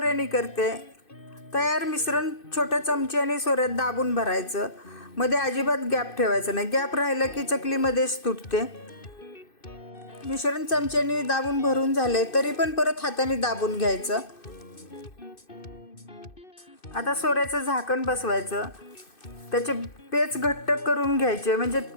करते. तयार मिश्रण छोट्या चमच्याने सोऱ्यात दाबून भरायचं. मध्ये अजिबात गॅप ठेवायचा नाही. गॅप राहिला की चकलीमध्येच तुटते. मिश्रण चमच्याने दाबून भरून झाले तरी पण परत हाताने दाबून घ्यायचं. आता सोऱ्याचं झाकण बसवायचं. त्याचे पेच घट्ट करून घ्यायचे म्हणजे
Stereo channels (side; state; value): right; late; 2.6 ms